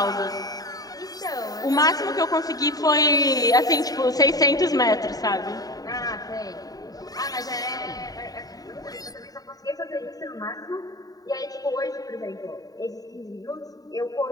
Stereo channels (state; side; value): late; right; 0.18 ms